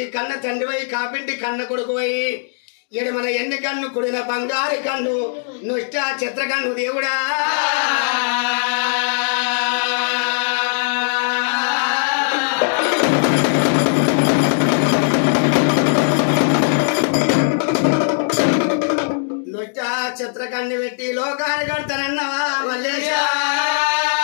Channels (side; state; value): right; silent; digital silence